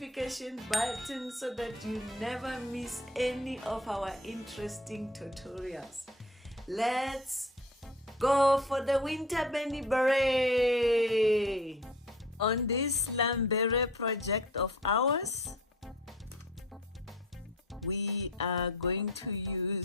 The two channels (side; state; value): both; normal; correlation 0.45